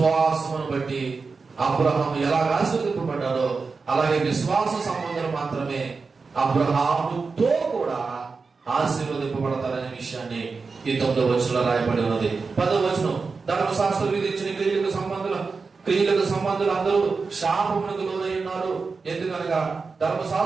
బట్టి అబ్రహాము ఎలా ఆశీర్వదింపబడ్డాడో అలాగే విశ్వాస సంబంధాలు మాత్రమే అబ్రహాముతో కూడా ఆశీర్వదింపబడతారనే విషయాన్ని ఈ 9వ వచనంలో రాయబడి ఉన్నది. 10వ వచనం, ధర్మశాస్త్రం విధించిన క్రియలకు సంబంధులు అందరూ శాపమునకు లోనై ఉన్నారు. ఎందుకనగా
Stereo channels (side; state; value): left; quieter; 4.6 dB